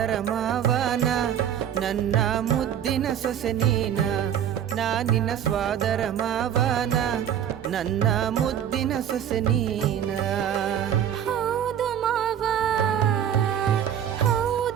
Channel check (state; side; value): quieter; left; 9.6 dB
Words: ಮಾವನ ನನ್ನ ಮುದ್ದಿನ ಸೊಸೆ ನೀನ ನಿನ್ನ ಸ್ವಾದರ ಮಾವನ ನನ್ನ ಮುದ್ದಿನ ಸೊಸೆ ನೀನ ಹೌದು ಮಾವ